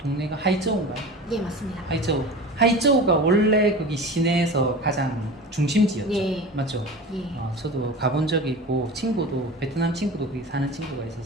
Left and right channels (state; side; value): normal; both; correlation 0.33